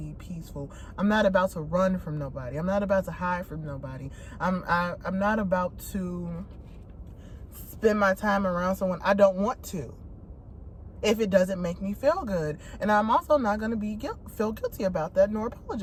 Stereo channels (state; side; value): identical; both; correlation 1.00